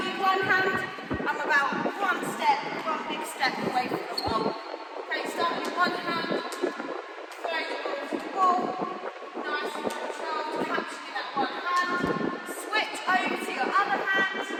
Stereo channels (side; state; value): both; identical; correlation 1.00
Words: in one hand, I'm about one big step away from the ball. Okay, starting in one hand. Nice and controlled, capturing that one hand. Switch over to your other hand.